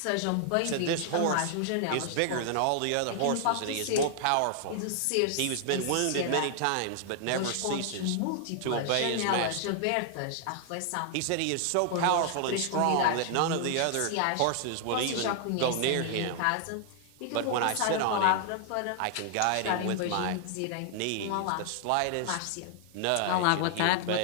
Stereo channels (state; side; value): different; both; correlation 0.00